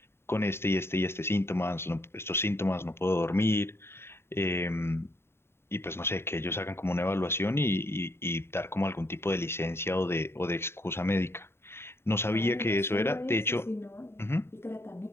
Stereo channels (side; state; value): right; late; 0.12 ms